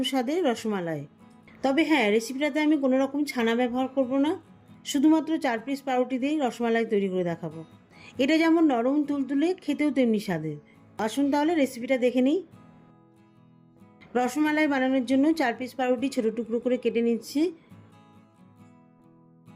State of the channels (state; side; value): identical; both; correlation 1.00